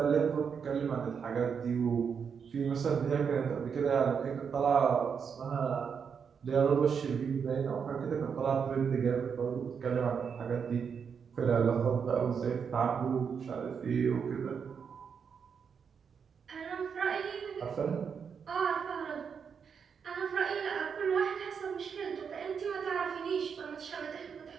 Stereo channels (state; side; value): quieter; left; 6.6 dB